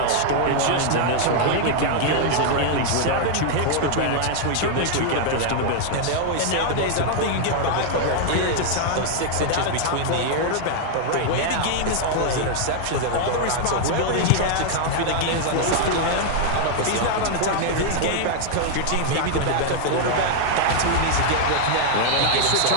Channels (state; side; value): different; both; correlation -0.01